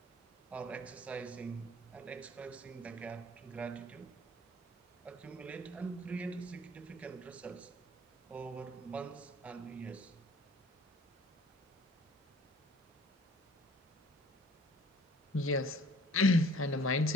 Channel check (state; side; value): normal; both; correlation 0.52